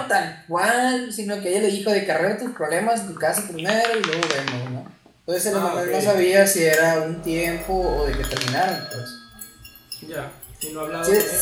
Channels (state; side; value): identical; both; correlation 1.00